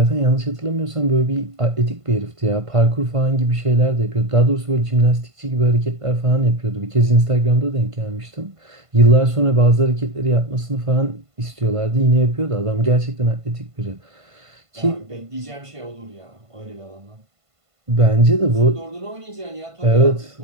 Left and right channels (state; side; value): late; left; 1.5 ms